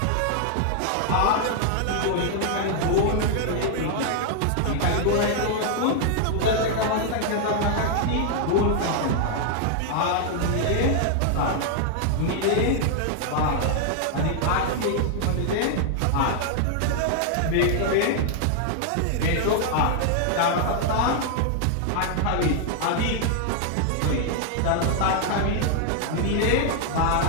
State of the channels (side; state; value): both; different; correlation 0.00